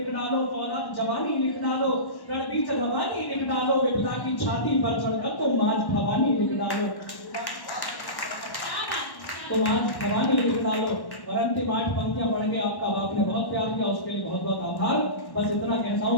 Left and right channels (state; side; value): late; right; 1.1 ms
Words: डालो, फौलाद जवानी लिख डालो, रणबीच रवानी लिख डालो, विपदा की छाती पर चढ़कर तुम आज भवानी लिख डालो, तुम आज भवानी लिख डालो। और अंतिम 8 पंक्तियां पढ़ के आपका बाप ने बहुत प्यार किया, उसके लिए बहुत बहुत आभार। बस इतना कहता